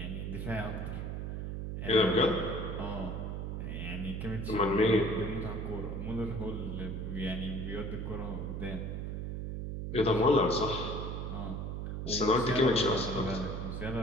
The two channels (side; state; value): right; noise; hum, 4 dB below the sound